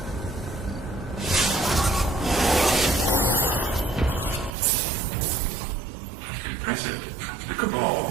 Impressive. The Cabal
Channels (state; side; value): drops out; left; at 4.5 s